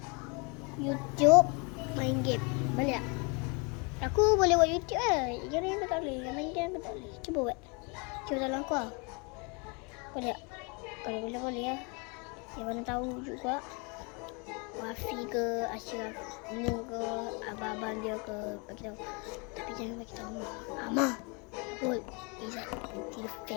YouTube main game. Boleh tak? Aku boleh buat YouTube lah. Yang lain aku tak boleh. Yang main game aku tak boleh. Cuba buat. Cuba tolong aku lah. Boleh tak? Kalau boleh lah. Yang mana tahu juga. Wafi ke, Ashraf ni ke, abang-abang dia ke, bagi tahu. Tapi jangan bagi tahu Amah. Betul. Izzat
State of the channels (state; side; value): quieter; right; 31.9 dB